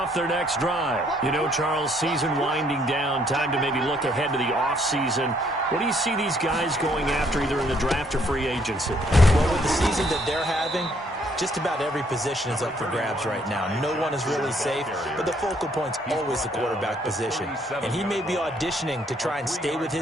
their next drive. You know, Charles, season winding down, time to maybe look ahead to the offseason. What do you see these guys going after either in the draft or free agency? Well, with the season that they're having, just about every position is up for grabs right now. No one is really safe, but the focal point's always the quarterback position. And he may be auditioning to try and stay with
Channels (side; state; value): both; normal; correlation 0.67